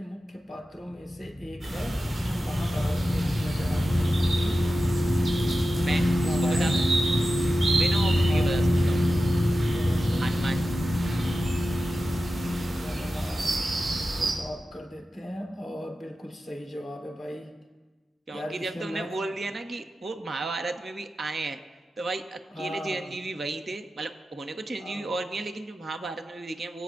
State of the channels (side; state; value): both; normal; correlation 0.93